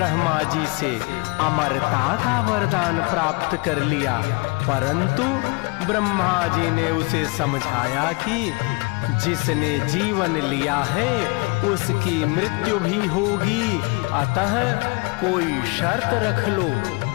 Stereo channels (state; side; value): quieter; right; 29.0 dB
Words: जी से अमरता का वरदान प्राप्त कर लिया, परंतु ब्रह्मा जी ने उसे समझाया कि जिसने जीवन लिया है उसकी मृत्यु भी होगी, अतः कोई शर्त रख लो।